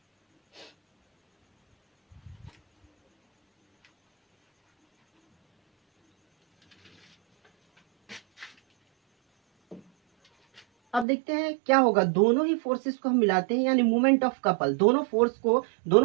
अब देखते हैं क्या होगा, दोनों ही फोर्सेस को हम मिलाते हैं यानी मोमेंट ऑफ कपल।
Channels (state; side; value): drops out; left; at 11.1 s